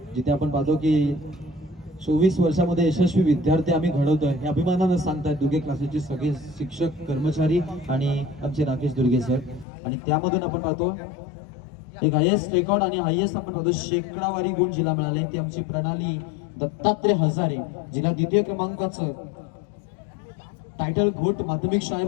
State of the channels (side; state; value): right; drops out; at 9.7 s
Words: जिथे आपण पाहतो की 24 वर्षामध्ये यशस्वी विद्यार्थी आम्ही घडवतोय हे अभिमानानं सांगतात दुर्गे क्लासेसचे सगळे शिक्षक, कर्मचारी आणि आमचे राकेश दुर्गे सर. आणि त्यामधून आपण पाहतो एक हायेस्ट रेकॉर्ड आणि हायेस्ट आपण पाहतो शेकडावारी गुण जिला मिळाले ती आमची प्रणाली दत्तात्रय हजारे, जिला द्वितीय क्रमांकाचं टायटल घोट माध्यमिक